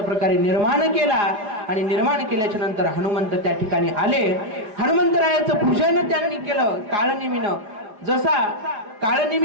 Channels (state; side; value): late; left; 4.8 ms